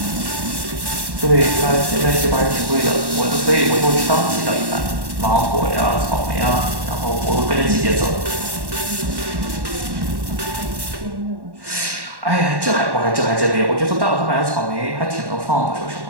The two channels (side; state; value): left; late; 1.1 ms